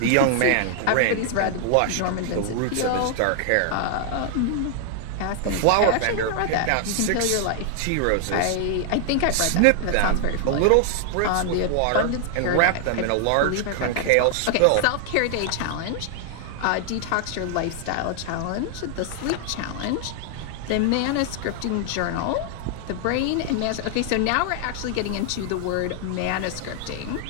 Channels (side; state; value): both; different; correlation 0.00